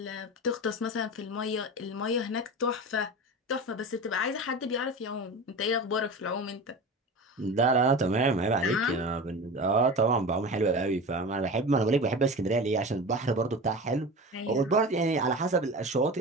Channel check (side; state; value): both; normal; correlation 0.31